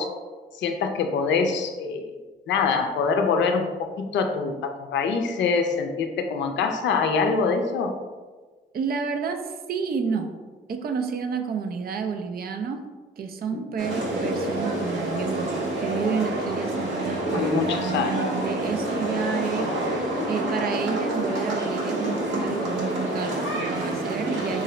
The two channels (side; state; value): both; normal; correlation 0.37